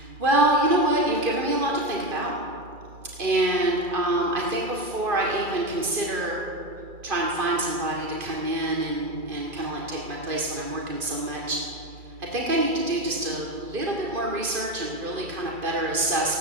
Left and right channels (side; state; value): left; late; 2.3 ms